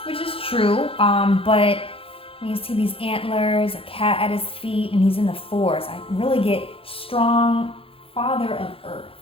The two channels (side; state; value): right; late; 0.27 ms